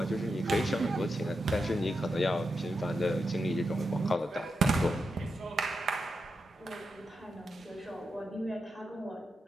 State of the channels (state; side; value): normal; both; correlation 0.87